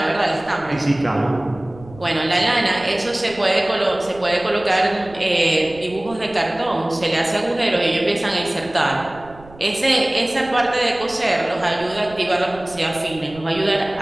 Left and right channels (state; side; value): noise; right; rumble, 21 dB below the sound